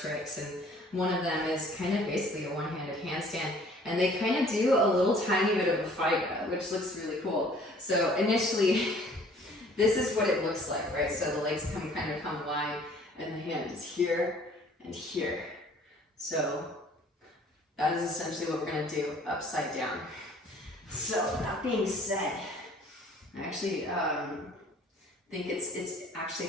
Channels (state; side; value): normal; both; correlation 0.54